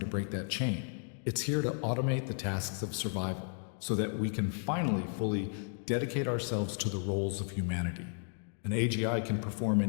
break that chain. It's here to automate the tasks of survival so that we can finally fully dedicate ourselves to the roles of humanity. An AGI can perform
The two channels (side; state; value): right; silent; 55 dB below the other